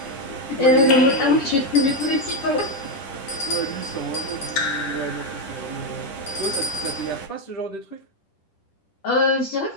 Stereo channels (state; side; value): late; right; 10 ms